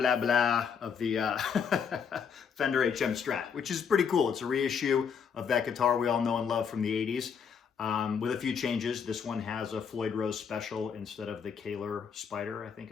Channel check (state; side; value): quieter; right; 6.8 dB